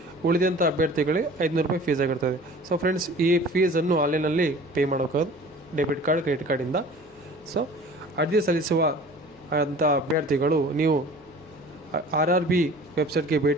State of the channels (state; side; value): normal; both; correlation 0.44